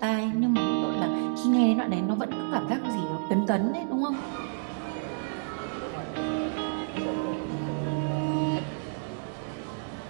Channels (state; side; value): silent; left; digital silence